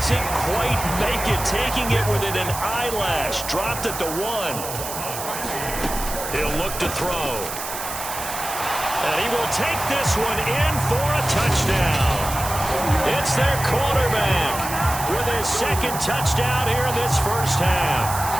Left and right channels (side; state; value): right; noise; hiss, 7 dB below the sound